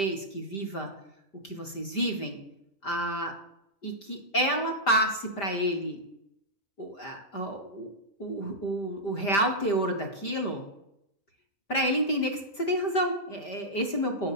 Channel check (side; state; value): right; late; 5.1 ms